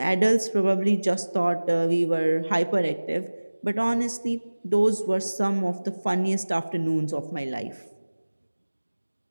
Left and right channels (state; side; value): inverted; both; correlation -1.00